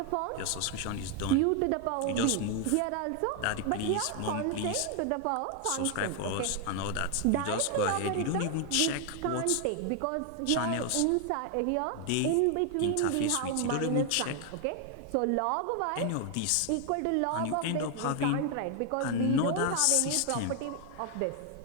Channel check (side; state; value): both; different; correlation 0.01